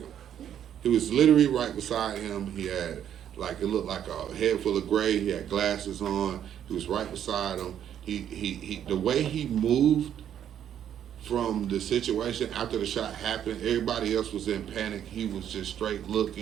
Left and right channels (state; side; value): quieter; left; 9.8 dB